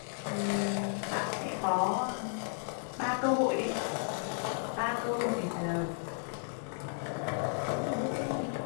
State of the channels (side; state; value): right; silent; 55 dB below the other